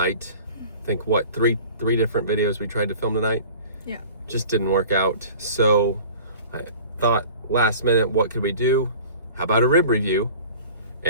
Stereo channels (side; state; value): both; inverted; correlation -0.43